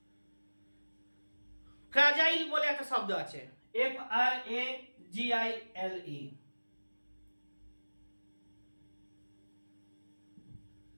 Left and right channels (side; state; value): both; inverted; correlation -1.00